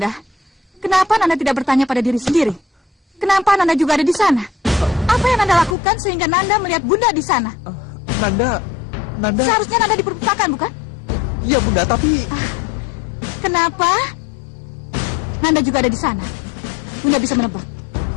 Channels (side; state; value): right; drops out; at 5.8 s